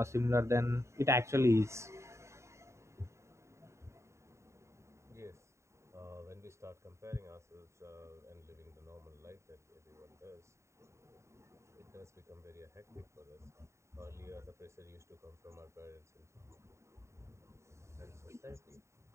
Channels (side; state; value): left; late; 0.14 ms